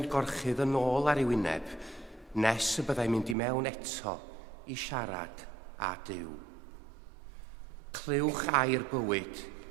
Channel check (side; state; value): left; drops out; at 3.4 s